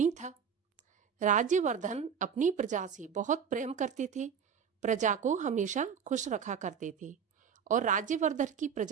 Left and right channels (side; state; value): left; quieter; 7.2 dB